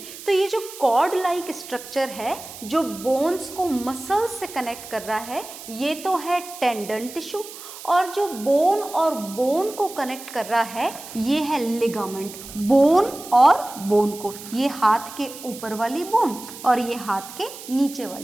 तो ये जो कॉर्ड लाइक स्ट्रक्चर है जो बोन्स को मसल से कनेक्ट कर रहा है, ये तो है टेंडन टिश्यू. और जो बोन और बोन को कनेक्ट कर रहा है ये है लिगामेंट. बोन और बोन को, ये हाथ के ऊपर वाली बोन और ये हाथ के नीचे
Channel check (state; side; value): noise; right; hiss, 14 dB below the sound